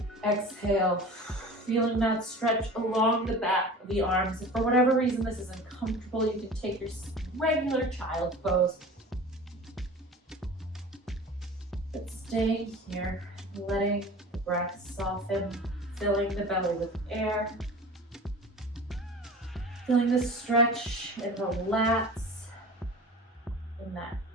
Exhale, feeling that stretch along the back of the arms. If for whatever reason this is uncomfortable, you can take your regular child pose. But staying here, letting the breath soften, filling the belly with air. Feeling the stretch in the lats, in that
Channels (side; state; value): both; normal; correlation 0.38